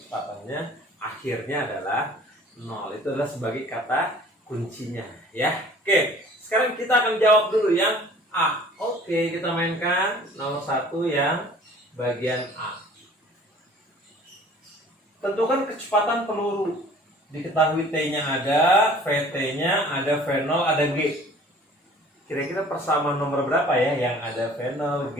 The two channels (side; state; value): both; normal; correlation 0.50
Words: akhirnya adalah 0. Itu adalah sebagai kata kuncinya ya. Oke, sekarang kita akan jawab dulu yang A. Oke, kita mainkan nomor 1 yang bagian A. Tentukan kecepatan peluru. Diketahui T-nya ada, VT-nya ada, V0 ada, G. Kira-kira persamaan nomor berapa ya yang ada V0,